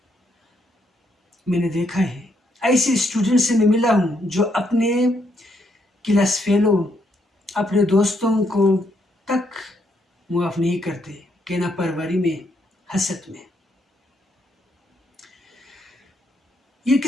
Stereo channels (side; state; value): both; normal; correlation 0.75